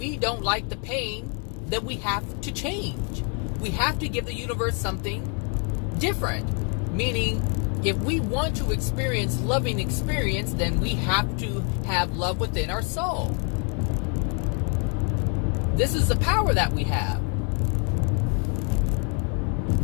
don't like the pain, then we have to change. We have to give the universe something different. Meaning, if we want to experience loving experience, then we have to have love within our soul. This is the power that we have.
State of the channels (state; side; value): quieter; right; 38.3 dB